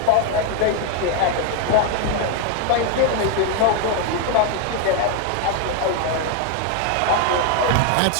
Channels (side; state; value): both; different; correlation 0.01